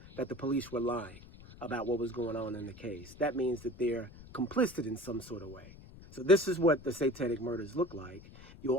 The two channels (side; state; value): left; noise; rumble, 18 dB below the sound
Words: that the police were lying about what was going on in the case. That means that they're complicit in some sort of way. So this is what the satanic murders look like. You'll